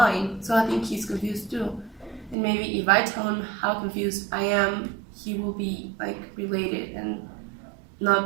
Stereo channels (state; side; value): drops out; left; at 2.4 s